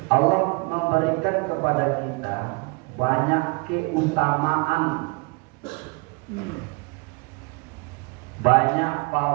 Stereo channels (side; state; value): left; quieter; 29.8 dB